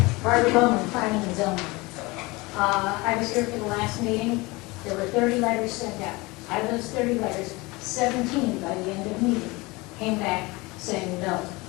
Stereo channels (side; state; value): right; quieter; 23.6 dB